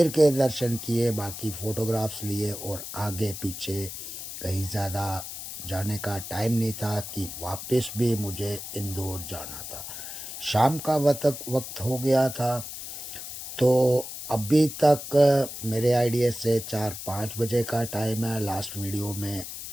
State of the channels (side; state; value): left; noise; hiss, 9 dB below the sound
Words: के दर्शन किए, बाकी फ़ोटोग्राफ्स लिए और आगे पीछे कहीं ज़्यादा जाने का टाइम नहीं था कि वापस भी मुझे इंदौर जाना था। शाम का वक्त हो गया था। तो अभी तक मेरे आइडिया से 4-5 बजे का टाइम है। लास्ट वीडियो में